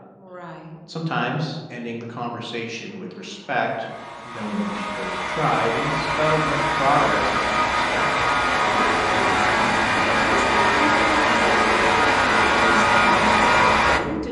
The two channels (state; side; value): identical; both; correlation 1.00